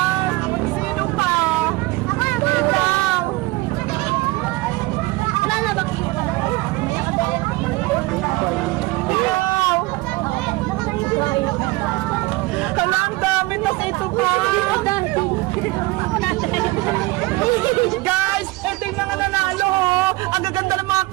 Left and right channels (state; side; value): quieter; left; 21.6 dB